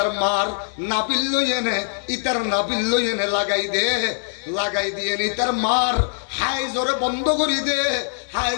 মার নাবিল লই এনে ইতার নাবিল লই এনে লাগাই দে, লাগাই দিয়ে নি তার মার হাই জোরে বন্ধ করি দে, হাই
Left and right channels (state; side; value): silent; right; digital silence